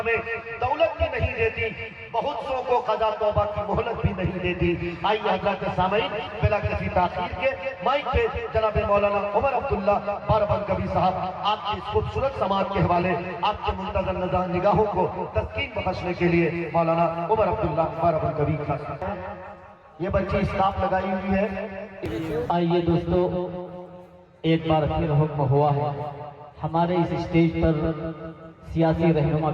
में दौलत भी नहीं देती, बहुत सौ को कज़ा तौबा की मोहलत भी नहीं देती। आइए हज़रात सामईन, बिला किसी ताख़ीर के माइक पे जनाब मौलाना उमर अब्दुल्ला बाराबंकी साहब आपकी इस खूबसूरत समाज के हवाले आपके मुंतज़र नज़र निगाहों को तस्कीन बख्शने के लिए मौलाना उमर अब्दुल्ला बाराबंकी खास। ये बच्ची स्टाफ लगाई हुई है। आइए दोस्तों, एक बार फिर हुक्म हुआ है, हमारे इस स्टेज पर सियासी रहनुमा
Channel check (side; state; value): both; identical; correlation 1.00